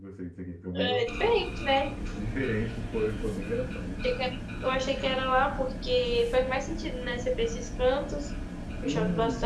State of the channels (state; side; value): identical; both; correlation 1.00